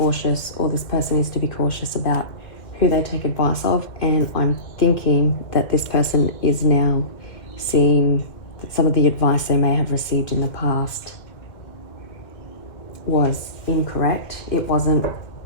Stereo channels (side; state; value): right; late; 2.1 ms